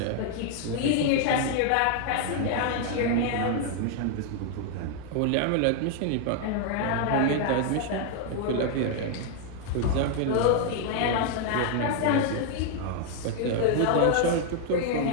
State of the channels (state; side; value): different; both; correlation 0.00